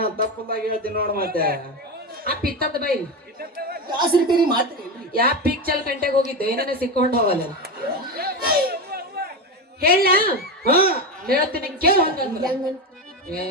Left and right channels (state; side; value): normal; both; correlation 0.18